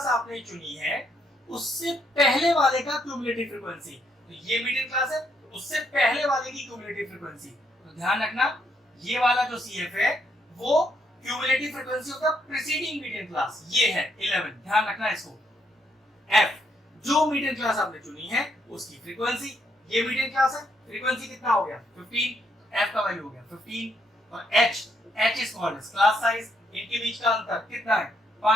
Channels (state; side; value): normal; both; correlation 0.74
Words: आपने चुनी है उससे पहले वाले का क्यूमुलेटिव फ्रीक्वेंसी। तो ये मीडियन क्लास है, उससे पहले वाले की क्यूमुलेटिव फ्रीक्वेंसी। तो ध्यान रखना ये वाला जो सी एफ है वो cumulative frequency of the preceding median class, ये है 11। ध्यान रखना इसको। एफ जो मीडियन क्लास आपने चुनी है उसकी फ्रीक्वेंसी, ये मीडियन क्लास है, फ्रीक्वेंसी कितना हो गया 15, एफ का वैल्यू हो गया 15। और H is called as class size, इनके बीच का अंतर कितना है